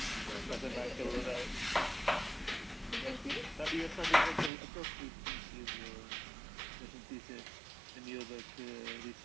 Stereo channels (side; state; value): left; drops out; at 4.5 s